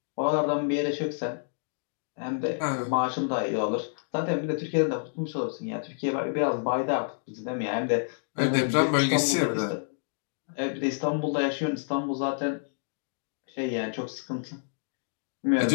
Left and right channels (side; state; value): right; silent; digital silence